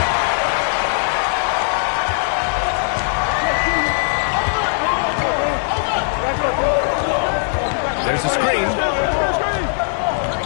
There's a screen.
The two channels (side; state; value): right; silent; digital silence